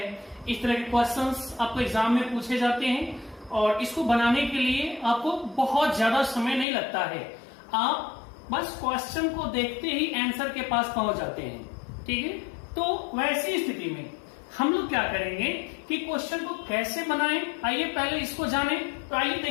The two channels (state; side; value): drops out; right; at 6.7 s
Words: इस तरह के क्वेश्चंस आपको एग्जाम में पूछे जाते हैं और इसको बनाने के लिए आपको बहुत ज्यादा समय नहीं लगता है। आप बस क्वेश्चन को देखते ही आंसर के पास पहुंच जाते हैं, ठीक है। तो वैसी स्थिति में हम लोग क्या करेंगे कि क्वेश्चन को कैसे बनाएं, आइए पहले इसको जानें। तो आइए